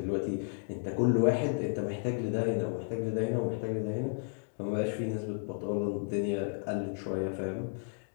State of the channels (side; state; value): right; silent; digital silence